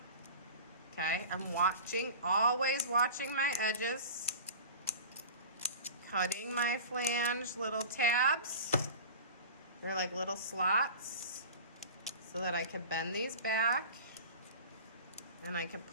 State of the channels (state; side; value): inverted; both; correlation -0.37